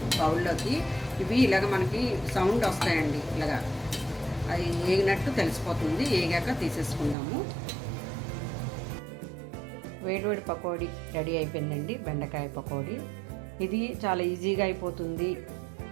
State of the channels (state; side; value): drops out; left; at 7.2 s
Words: బౌల్లోకి. ఇవి ఇలాగ మనకి సౌండ్ వస్తాయండి, ఇలాగా అది వేగినట్టు తెలిసిపోతుంది. వేగాక తీసేసుకుందాము. వేడివేడి పకోడీ రెడీ అయిపోయిందండి, బెండకాయ పకోడీ. ఇది చాలా ఈజీగా అయిపోతుంది,